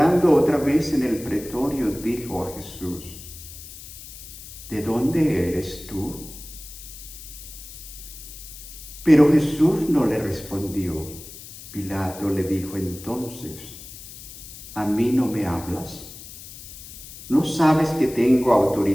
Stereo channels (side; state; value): left; noise; hiss, 15 dB below the sound